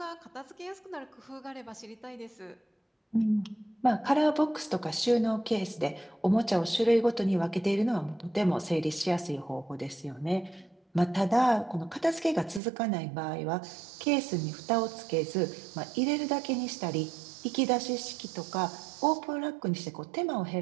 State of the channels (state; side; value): drops out; left; at 12.6 s